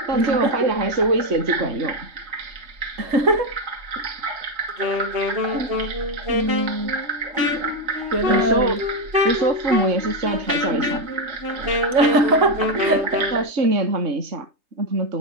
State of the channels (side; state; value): left; late; 3.2 ms